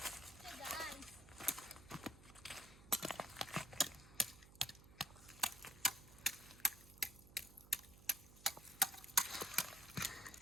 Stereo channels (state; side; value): noise; right; hum, 19 dB below the sound